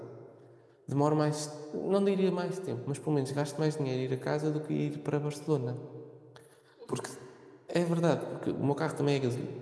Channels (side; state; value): both; identical; correlation 1.00